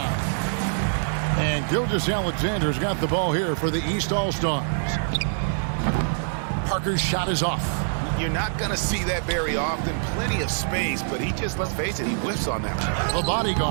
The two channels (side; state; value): left; silent; digital silence